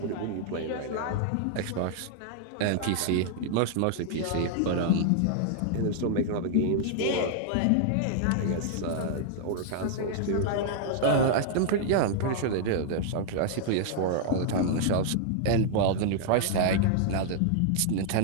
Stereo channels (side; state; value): both; different; correlation -0.01